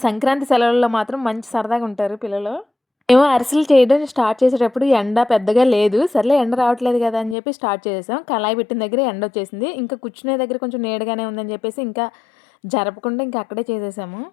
సంక్రాంతి సెలవుల్లో మాత్రం మంచి సరదాగా ఉంటారు పిల్లలు. మేము అరిసెలు చేయడం స్టార్ట్ చేసేటప్పుడు ఎండ పెద్దగా లేదు. సర్లే ఎండ రావట్లేదు గదా! అని జెప్పి స్టార్ట్ చేసేసాం. కళాయి పెట్టిన దగ్గరే ఎండొచ్చేసింది. ఇంకా కూర్చునే దగ్గర కొంచెం నీడగానే ఉందని జెప్పేసి ఇంకా జరపకుండా ఇంకా అక్కడే చేసేసాము.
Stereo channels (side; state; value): right; drops out; at 7.4 s